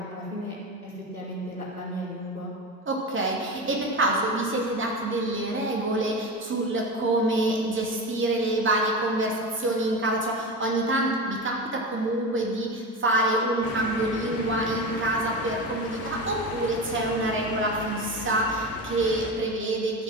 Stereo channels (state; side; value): normal; both; correlation 0.24